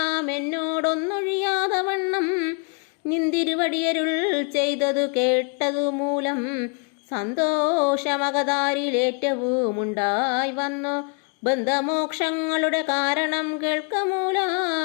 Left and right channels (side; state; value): right; quieter; 38.5 dB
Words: എന്നോടൊന്നൊഴിയാതെ വണ്ണം നിന്തിരുവടിയരുൾ ചെയ്തതു കേട്ടതു മൂലം സന്തോഷമകതാരിലേറ്റവും ഉണ്ടായി വന്നു. ബന്ധമോക്ഷങ്ങളുടെ കാരണം